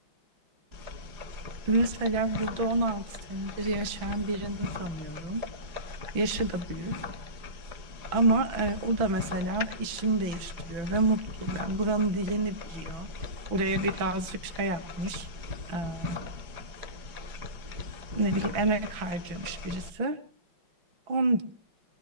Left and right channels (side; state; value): left; late; 5.9 ms